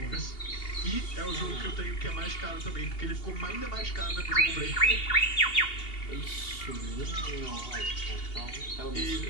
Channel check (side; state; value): right; late; 2.8 ms